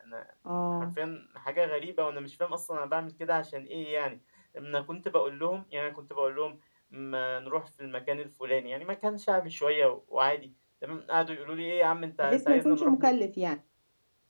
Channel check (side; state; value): both; inverted; correlation -1.00